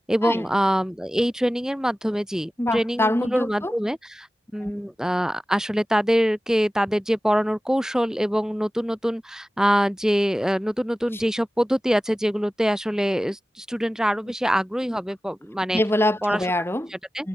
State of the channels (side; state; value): both; normal; correlation 0.95